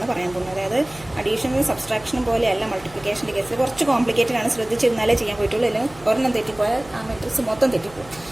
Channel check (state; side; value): noise; right; hum, 21 dB below the sound